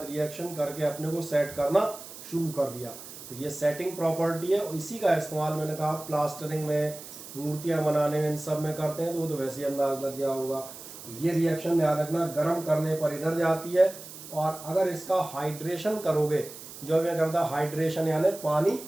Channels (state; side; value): noise; right; hiss, 14 dB below the sound